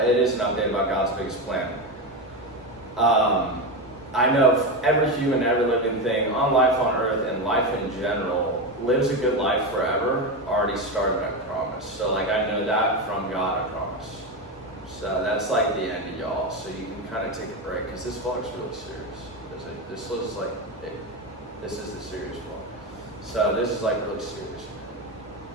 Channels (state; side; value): normal; both; correlation 0.15